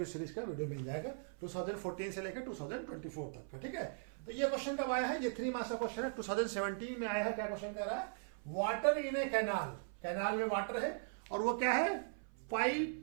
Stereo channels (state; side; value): silent; left; 52 dB below the other